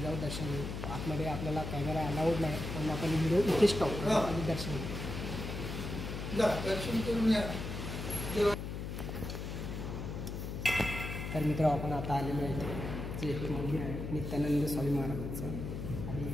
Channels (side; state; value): left; noise; hum, 5 dB below the sound